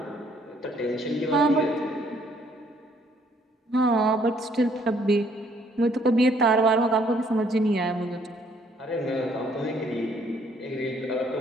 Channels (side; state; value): both; normal; correlation 0.65